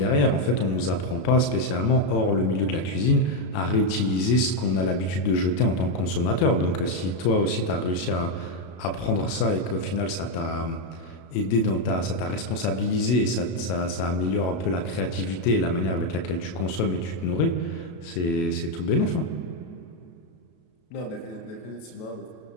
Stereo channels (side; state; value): right; late; 33 ms